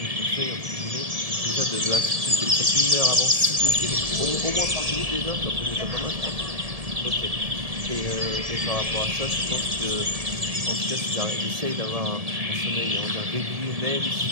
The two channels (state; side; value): late; left; 1.7 ms